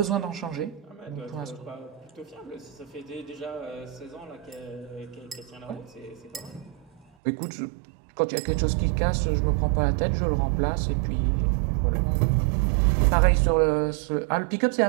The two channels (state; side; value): drops out; left; at 7.1 s